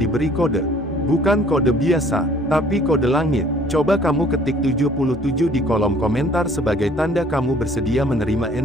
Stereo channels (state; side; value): normal; both; correlation 0.56